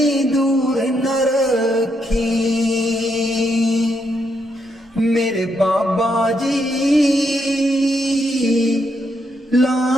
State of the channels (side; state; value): both; normal; correlation 0.78